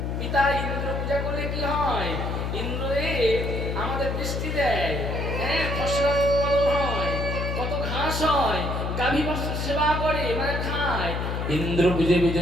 পিতা, ইন্দ্র পূজা করলে কি হয়? ইন্দ্রে আমাদের বৃষ্টি দেয়, হ্যাঁ, ফসল উৎপাদন হয়, কত ঘাস হয়, গাভী বস্ত্র সেবা করে, মানে খায়। ইন্দ্র পূজে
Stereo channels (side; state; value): left; noise; hum, 2 dB below the sound